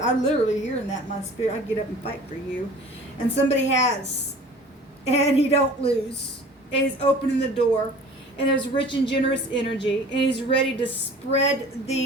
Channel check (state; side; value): normal; both; correlation 0.45